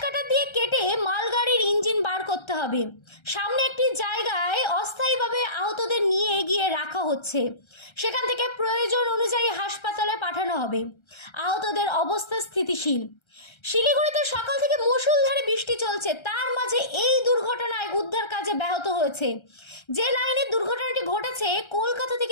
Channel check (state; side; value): late; right; 1.3 ms